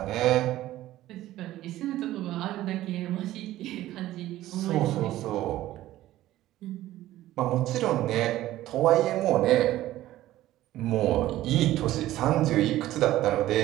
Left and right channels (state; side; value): quieter; left; 14.9 dB